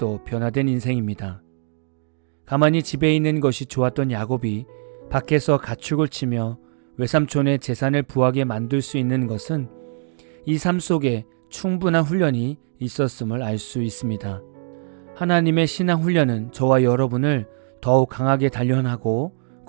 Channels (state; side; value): silent; left; digital silence